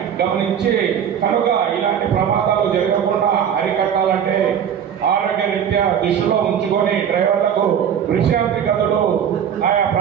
గమనించి కనుక ఇలాంటి ప్రమాదాలు జరగకుండా అరికట్టాలంటే ఆరోగ్య రీత్యా దృష్టిలో ఉంచుకొని డ్రైవర్లకు విశ్రాంతి గదులు ఆయా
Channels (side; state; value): left; quieter; 8.6 dB